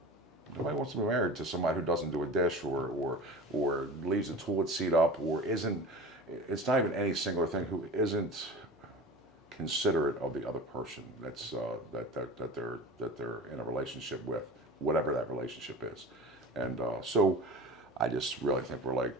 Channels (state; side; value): normal; both; correlation 0.35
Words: Nobody wants to be married to somebody who doesn't do a dish or leaves the toilet seat up or isn't. It's not even any singular thing who isn't considerate of the other person that's that they're in a relationship with, whatever that relationship is, and so I just really think we're like